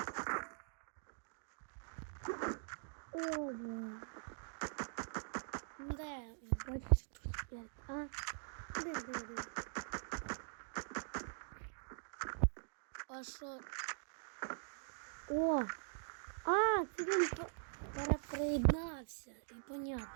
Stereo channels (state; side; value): silent; left; digital silence